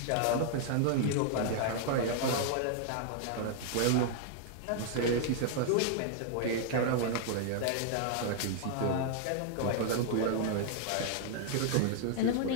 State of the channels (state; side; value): different; both; correlation -0.01